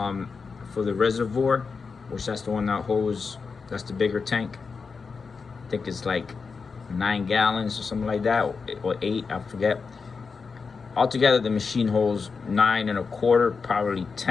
the reservoir, which that's the one that holds, that's the bigger tank. I think it's like 9 gallons or something like that, or 8, I forget. Altogether the machine holds 9 1/4, probably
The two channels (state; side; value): quieter; right; 5.0 dB